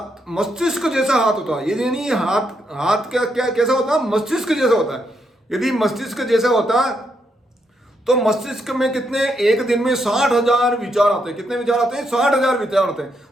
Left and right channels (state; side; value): normal; both; correlation 0.79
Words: मस्तिष्क जैसा हाथ होता है, यदि नहीं हाथ क्या कैसा होता है, मस्तिष्क जैसा होता है। यदि मस्तिष्क जैसा होता तो मस्तिष्क में कितने, एक दिन में 60,000 विचार आते हैं। कितने विचार आते हैं? 60,000 विचार आते हैं।